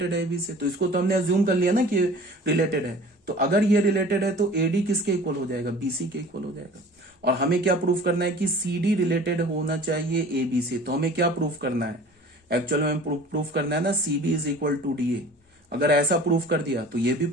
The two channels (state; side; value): normal; both; correlation 0.44